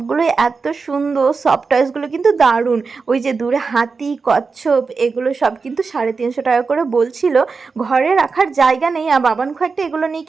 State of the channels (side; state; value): left; quieter; 4.7 dB